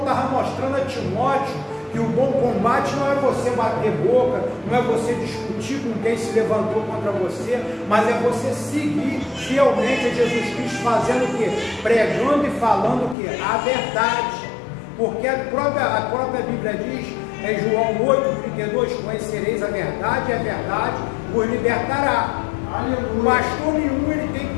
mostrando a Timóteo que o bom combate não é você bater boca, não é você discutir com quem se levantou contra você, mas é você seguir fielmente a Jesus Cristo, fazendo o quê? Pregando e falando o quê? A verdade. Porque a própria Bíblia diz, em João 8:32, conhecereis a verdade e a verdade vos libertará. O pastor nenhum ele tem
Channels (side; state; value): right; drops out; at 13.2 s